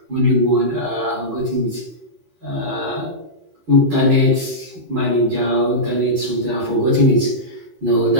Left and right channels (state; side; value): late; left; 13 ms